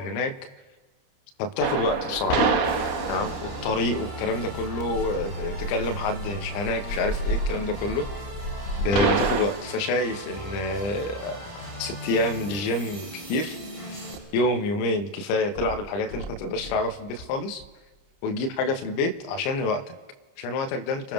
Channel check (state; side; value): late; right; 29 ms